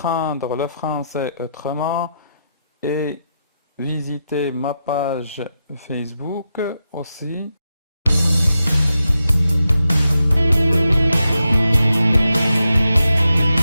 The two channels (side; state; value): both; inverted; correlation -0.87